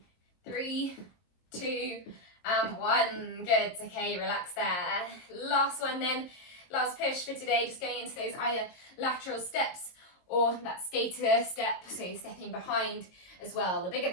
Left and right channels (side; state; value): right; late; 22 ms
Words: 3, 2, and 1. Good, okay, relax there. Last one then, last push for today, just going into those either lateral steps or that skater step, so you're stepping behind as well. The bigger